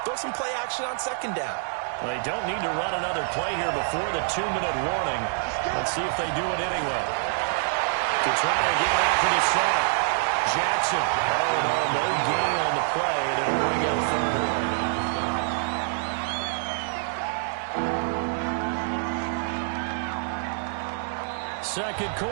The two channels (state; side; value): silent; left; 61 dB below the other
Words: throw some play action on second down. They don't need to run another play here before the 2-minute warning. Let's see if they do it anyway. To try and get after the sack. Jackson. Oh, no gain on the play, and it'll bring up third. Second